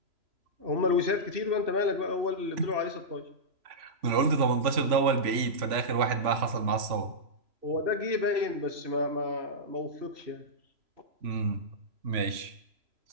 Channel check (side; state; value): left; late; 3.0 ms